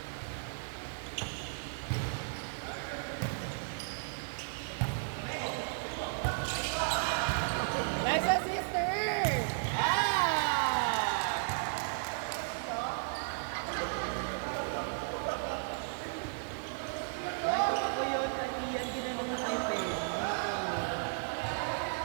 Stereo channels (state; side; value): silent; left; digital silence